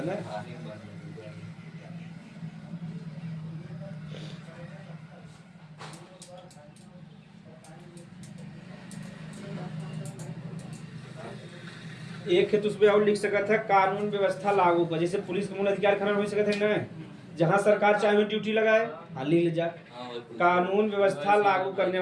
ना। एक है तो उसमें और लिख सकता है कानून व्यवस्था लागू कर। जैसे पुलिस का मूल अधिकार खनन हो सकता है ना, जहाँ सरकार चाहे ड्यूटी लगाए। हाँ लिख ले जा कानून व्यवस्था लागू करने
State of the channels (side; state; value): both; identical; correlation 1.00